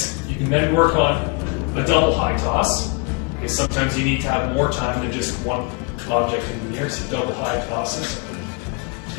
You can then work on a double high toss, because sometimes you need to have more time than just one object in the air, so double high tosses.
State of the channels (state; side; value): quieter; right; 30.0 dB